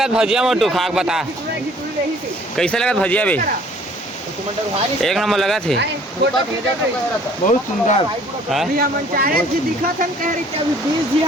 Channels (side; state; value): both; normal; correlation 0.56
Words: भजिया मोटू खाक बता कैसे लगा भजिया बे एक नंबर लगा थे। बहुत सुंदर। हाँ? अभी हम चाहे जी दिखत हन कह रही कि अभी 20 जी